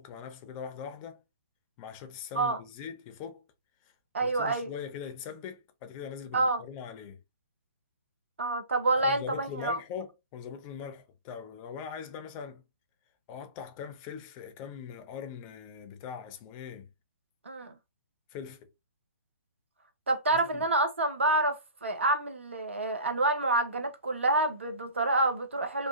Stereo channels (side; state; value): both; inverted; correlation -0.39